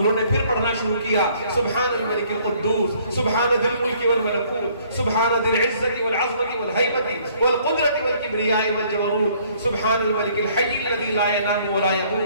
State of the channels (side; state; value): both; inverted; correlation -0.61